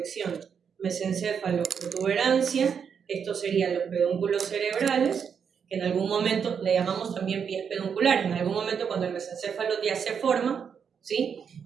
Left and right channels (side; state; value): left; quieter; 7.0 dB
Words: mesencéfalo-protuberancia. Estos serían los pedúnculos cerebrales, que en algún momento le llamamos también pies pedunculares. En algún momento, cuando el mesencéfalo ya se forma, ¿sí?